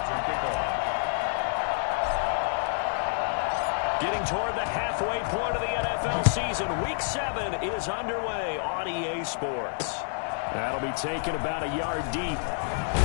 Getting toward the halfway point of the NFL season. Week 7 is underway on EA Sports. That'll be taken about a yard deep.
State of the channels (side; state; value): right; silent; digital silence